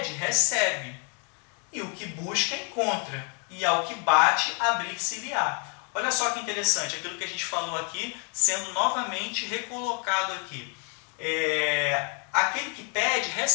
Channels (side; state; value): right; quieter; 38.7 dB